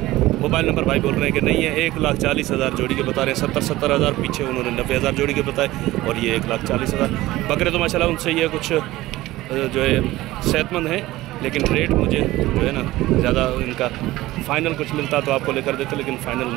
मोबाइल नंबर। भाई बोल रहे हैं कि नहीं है। 1,40,000 जोड़ी के बता रहे हैं। 70,000 पीछे उन्होंने 90,000 जोड़ी के बताए, और ये 1,40,000 बकरे। तो माशाल्लाह उनसे ये कुछ जो है सेहतमंद हैं, लेकिन रेट मुझे जो है ना ज़्यादा इनका फाइनल कुछ मिलता तो आपको लेकर देते, लेकिन फाइनल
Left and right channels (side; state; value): left; quieter; 17.4 dB